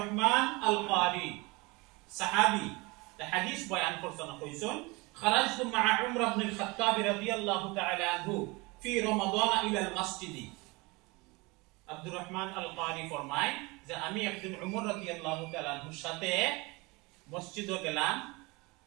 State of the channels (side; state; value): left; quieter; 25.2 dB